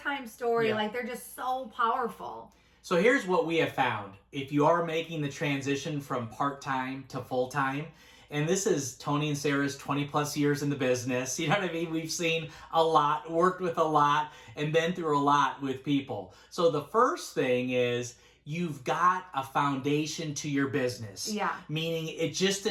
story. Like, they're just so powerful. So here's what we have found. If you are making the transition from part-time to full-time, and this is Tony and Sarah's 20 plus years in the business, you know what I mean? We've seen a lot, worked with a lot, and been through a lot with people. So the first thing is, you've got a foundation to your business. Yeah. Meaning it just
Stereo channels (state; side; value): identical; both; correlation 1.00